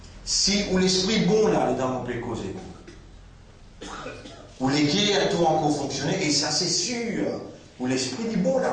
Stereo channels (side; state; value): both; identical; correlation 1.00